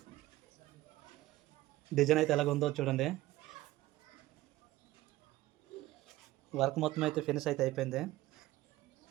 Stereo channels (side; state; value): left; quieter; 17.1 dB